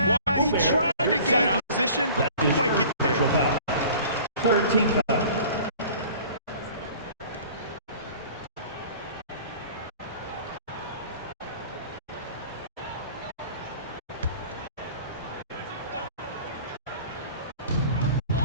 he tried to gain position, but didn't quite get there. Third team foul.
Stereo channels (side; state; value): both; inverted; correlation -0.46